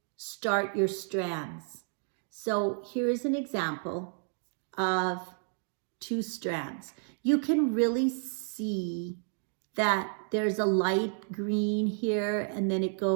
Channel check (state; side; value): silent; left; 57 dB below the other